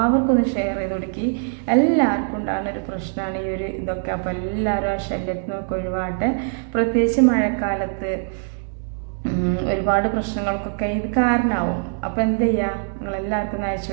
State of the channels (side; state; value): left; silent; 64 dB below the other